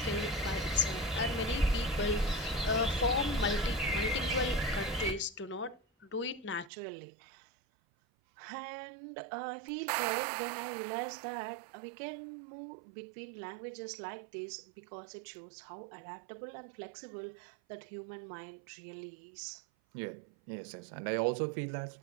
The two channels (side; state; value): left; drops out; at 6.7 s